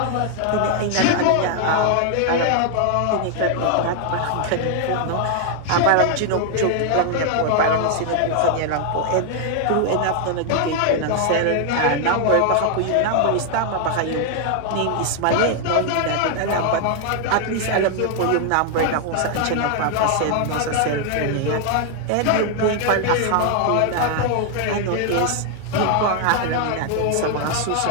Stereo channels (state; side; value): different; both; correlation 0.00